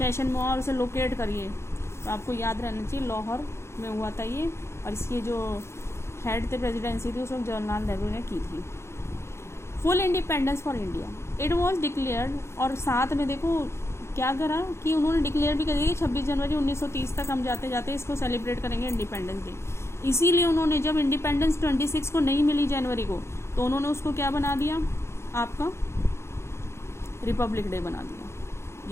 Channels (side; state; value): right; late; 0.13 ms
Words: में हुआ और उसे लोकेट करिए। तो आपको याद रहना चाहिए लाहौर में हुआ था ये, और इसकी जो हेड थे प्रेसिडेंसी थी उस वक्त जवाहरलाल नेहरू ने की थी। Full independence for India, it was declared, और साथ में देखो क्या करा कि उन्होंने डिक्लेयर भी कर दिया कि 26 जनवरी 1930 तक हम जाते जाते इसको सेलिब्रेट करेंगे इंडिपेंडेंस डे। इसीलिए उन्होंने जब इंडिपेंडेंस 26 को नहीं मिली जनवरी को, तो उन्होंने उसको क्या बना दिया, आपका रिपब्लिक डे बना दिया।